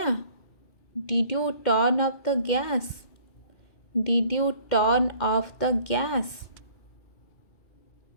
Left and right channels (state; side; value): late; right; 2.1 ms